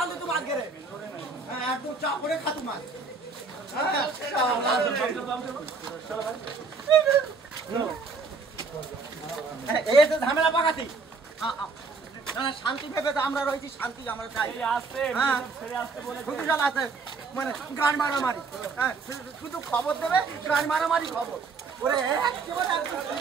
তো বাদ গেলে একদম চা করে খাতু মাছ। এই তো ঝামেলা পাকাতি শান্তি ভেবে তো আমরা রয়েছি, শান্তি আমরা চাই। আছে মানে গান মারামারি, শুধু খবর দেবে গান মারামারি খবর ওরে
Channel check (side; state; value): left; quieter; 4.4 dB